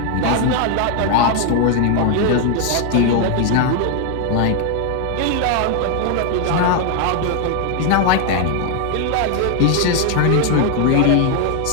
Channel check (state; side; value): different; both; correlation 0.01